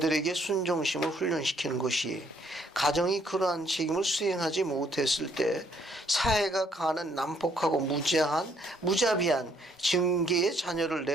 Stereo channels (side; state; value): both; normal; correlation 0.68